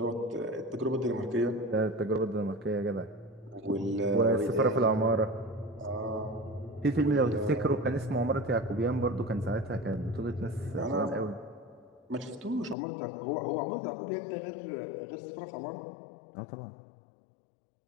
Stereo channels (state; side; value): drops out; right; at 12.8 s